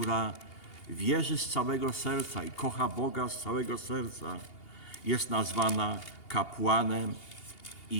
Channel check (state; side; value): late; right; 2.8 ms